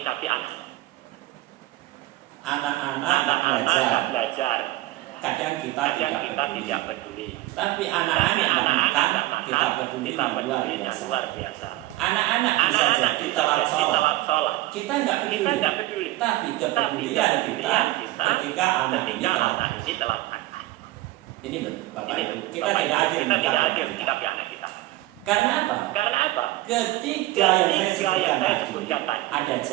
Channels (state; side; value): quieter; left; 16.9 dB